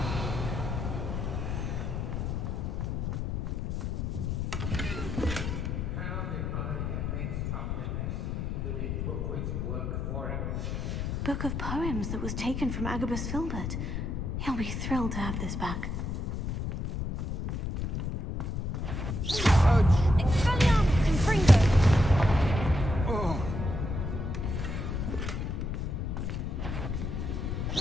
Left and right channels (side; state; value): left; noise; rumble, 2 dB below the sound